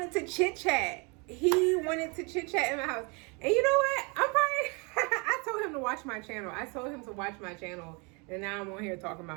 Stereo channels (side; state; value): left; quieter; 31.0 dB